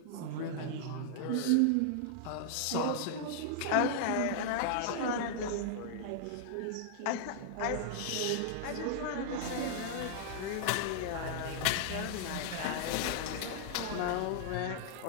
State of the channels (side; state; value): both; different; correlation -0.01